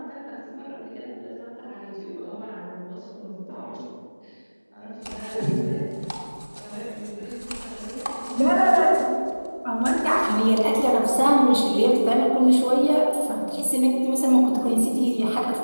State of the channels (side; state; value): both; inverted; correlation -1.00